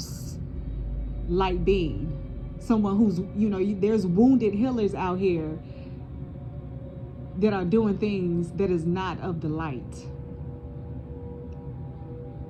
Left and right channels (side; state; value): both; identical; correlation 1.00